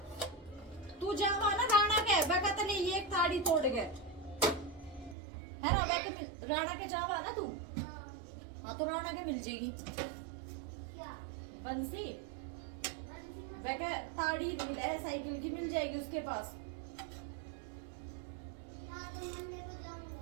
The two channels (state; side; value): drops out; left; at 5.2 s